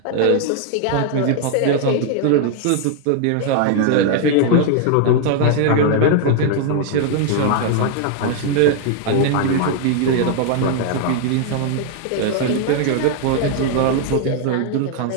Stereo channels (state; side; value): different; both; correlation 0.00